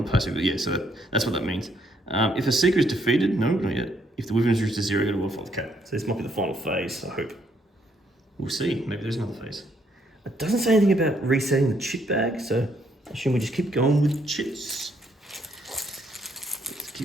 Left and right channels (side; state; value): both; normal; correlation 0.71